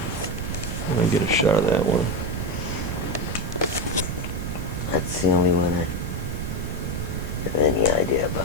Let me get a shot of that one. That's the only one I have any idea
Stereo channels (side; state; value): right; noise; rumble, 4 dB below the sound